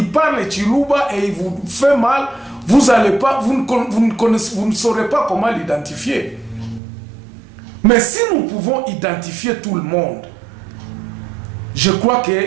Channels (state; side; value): drops out; left; at 6.8 s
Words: parle Chiluba et il vous fait mal, vous ne saurez pas comment l'identifier. Mais si nous pouvons identifier tout le monde, je crois